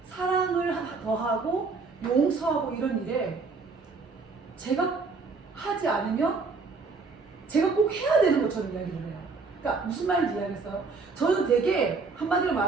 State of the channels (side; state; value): left; quieter; 4.3 dB